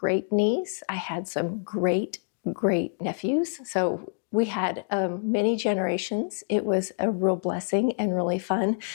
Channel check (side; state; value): right; silent; digital silence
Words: niece. I had some great nephews. So we had many generations. It was a real blessing and really fun.